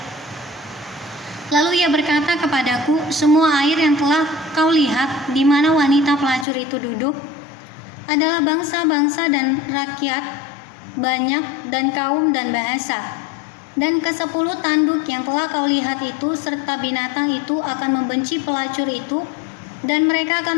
Lalu ia berkata kepadaku, "Semua air yang telah kau lihat di mana wanita pelacur itu duduk adalah bangsa-bangsa dan rakyat banyak dan kaum dan bahasa. Dan ke-10 tanduk yang telah kau lihat itu serta binatang itu akan membenci pelacur itu, dan mereka akan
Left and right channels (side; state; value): right; drops out; at 6.5 s